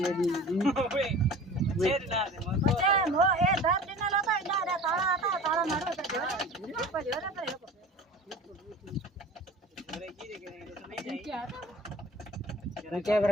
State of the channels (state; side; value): normal; both; correlation 0.40